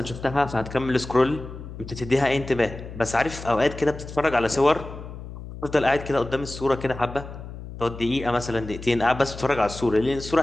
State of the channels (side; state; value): left; noise; hum, 12 dB below the sound